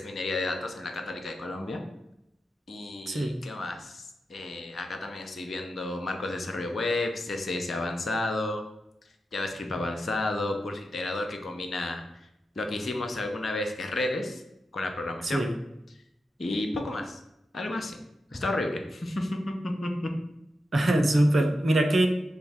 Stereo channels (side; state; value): both; normal; correlation 0.89